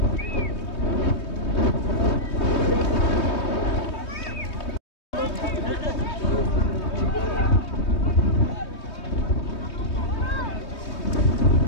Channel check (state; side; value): late; right; 3.2 ms